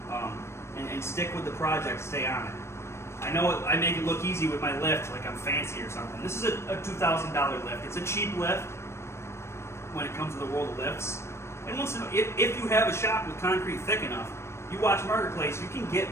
and stick with the project, stay on it. I know I make it look easy with my lift, like I'm fancy or something. This is a $2,000 lift. It's a cheap lift when it comes to the world of lifts. And once in a, if you have a shop with concrete thick enough, you watch Marketplace, you can get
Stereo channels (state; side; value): late; right; 0.13 ms